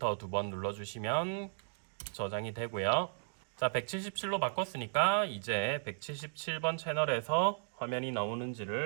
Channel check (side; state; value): left; silent; digital silence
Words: 2번 눌러주시면 저장이 되고요. 자, 177로 바꿨으니까 이제 177번 채널에서 화면이